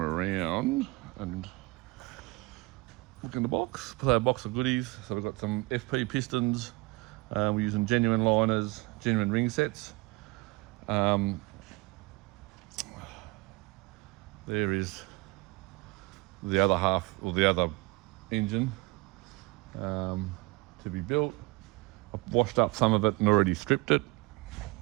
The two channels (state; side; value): quieter; left; 23.7 dB